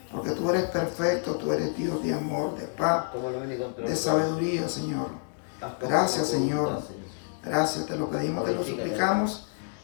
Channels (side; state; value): right; silent; 59 dB below the other